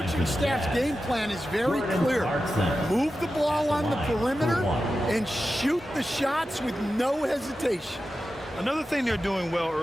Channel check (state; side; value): normal; both; correlation 0.92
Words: staff's game plan is very clear. Move the ball on the perimeter and shoot the shots with no hesitation. Another thing they're doing well